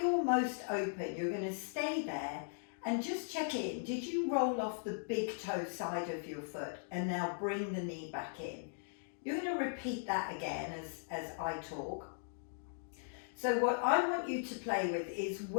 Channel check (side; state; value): right; silent; digital silence